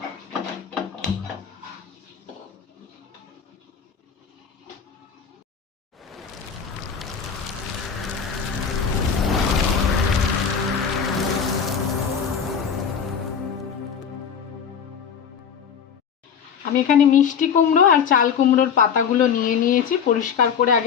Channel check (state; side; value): quieter; right; 7.2 dB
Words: আমি এখানে মিষ্টি কুমড়ো আর চাল কুমড়োর পাতাগুলো নিয়ে নিয়েছি, পরিষ্কার করে